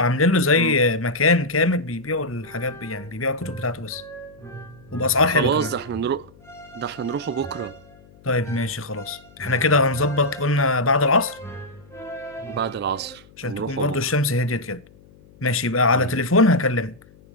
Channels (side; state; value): left; noise; hum, 26 dB below the sound